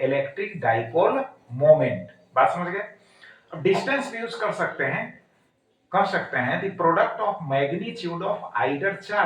electric dipole moment. बात समझ गए? अब डिस्टेंस भी यूज कर सकते हैं, कह सकते हैं the product of magnitude of either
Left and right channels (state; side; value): identical; both; correlation 1.00